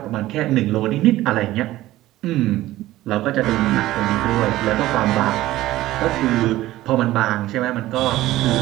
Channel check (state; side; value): quieter; left; 15.9 dB